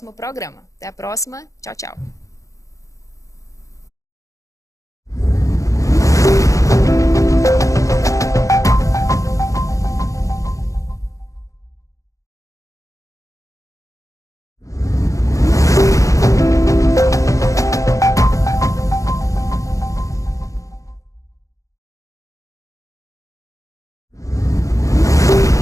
programa. Até a próxima. Tchau, tchau.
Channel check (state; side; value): late; right; 0.16 ms